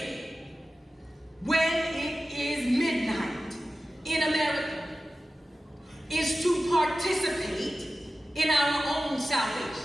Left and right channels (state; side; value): normal; both; correlation 0.94